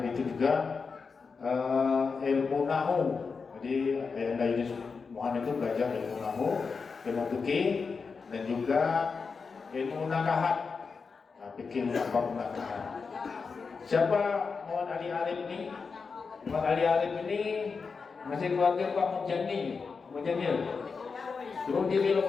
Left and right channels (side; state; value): right; quieter; 5.0 dB